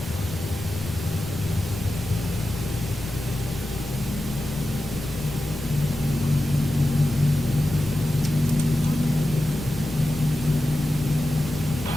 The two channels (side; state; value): both; normal; correlation 0.92